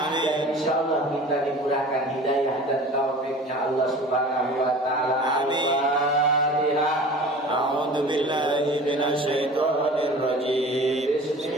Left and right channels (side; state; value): both; normal; correlation 0.41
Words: dan insyaallah kita dimurahkan hidayah dan taufiknya Allah Subhanahu wa taala. Al-Fatihah. A'udzu billahi minasy syaithanir rajim.